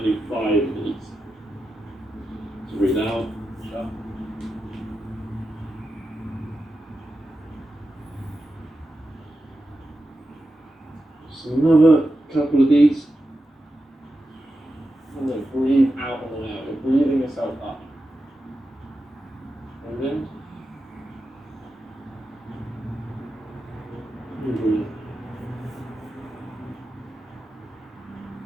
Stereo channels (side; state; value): both; normal; correlation 0.90